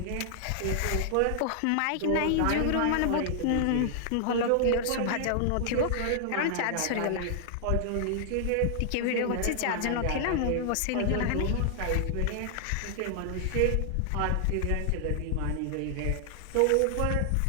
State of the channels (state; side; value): different; both; correlation 0.00